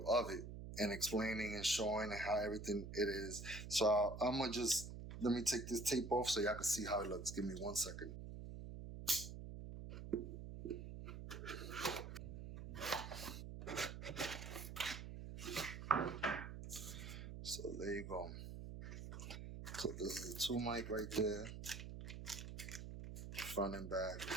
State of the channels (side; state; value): right; noise; hum, 9 dB below the sound